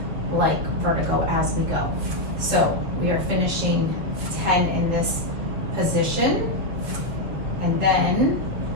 like vertigo as we go. So we are finishing 10 in this position, and then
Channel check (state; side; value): late; left; 7.3 ms